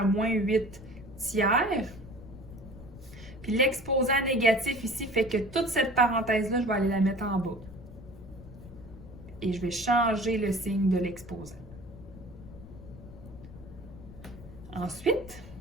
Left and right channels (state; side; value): noise; left; rumble, 16 dB below the sound